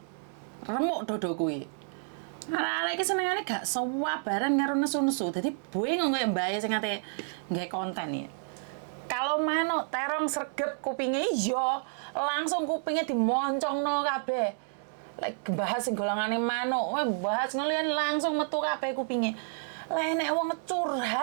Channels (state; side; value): silent; left; digital silence